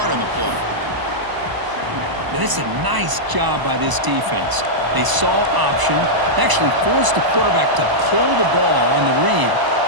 on the play. It's a nice job by this defense. They saw option, actually forced the quarterback to pull the ball on the read,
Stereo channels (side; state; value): left; late; 1.0 ms